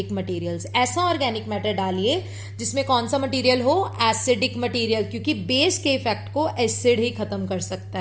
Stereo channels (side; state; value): both; identical; correlation 1.00